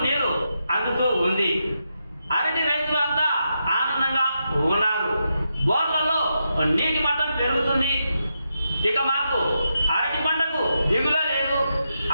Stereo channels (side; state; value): both; inverted; correlation -0.85